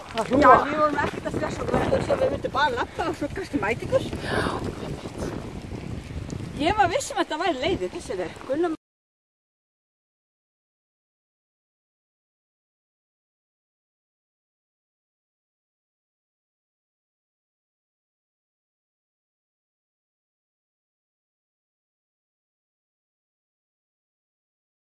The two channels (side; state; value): both; identical; correlation 1.00